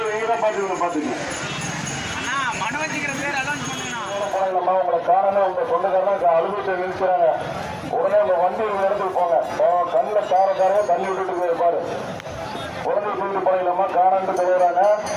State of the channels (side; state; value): both; identical; correlation 1.00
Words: நீங்க தான் பாத்துக்கணும். உங்களை காரணம் உங்க சொந்தக்காரங்க அலுவலகத்தை நிறுத்துறாங்க. உடனே உங்க வண்டி ஒரு இடத்துக்கு போங்க. கண்ணில் காரக்காரங்க தண்ணி விட்டுட்டு பாரு. குழந்தை தூக்கிட்டு போனீங்களாமா காணாண்டு தருவாங்க.